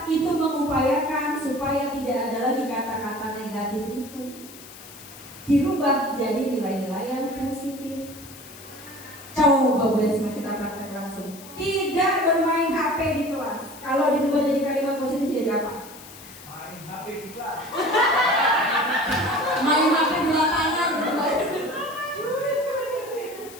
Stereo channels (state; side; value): noise; left; hiss, 17 dB below the sound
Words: itu mengupayakan supaya tidak ada lagi kata-kata negatif itu, dirubah jadi nilai-nilai yang positif. Coba Bu Esma kita praktek langsung. Tidak bermain HP di kelas. Kalau dirubah jadi kalimat positif jadi apa? Main HP di kelas. Main HP di lapangan.